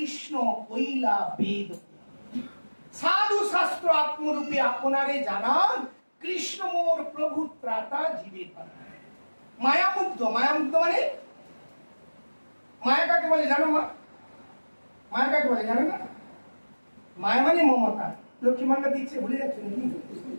কইলা বেদ। সাধু শাস্ত্র আত্মরূপে আপনারে জানান, কৃষ্ণ মোর প্রভু ত্রাতা জীবের পাঠায়। মায়ামুগ্ধ, মায়ামুগ্ধ মানে মায়া কাকে বলে জানো? মায়া কাকে বলে জানো না? মায়া মানে মমতা। লক্ষ্মী ভান্ডার দিচ্ছে, ভুলে যাচ্ছে নাকি?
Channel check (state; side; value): inverted; both; correlation -1.00